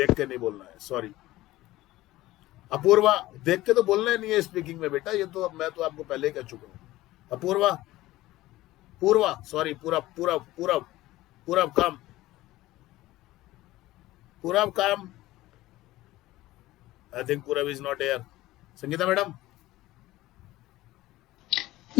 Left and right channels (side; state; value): right; quieter; 17.1 dB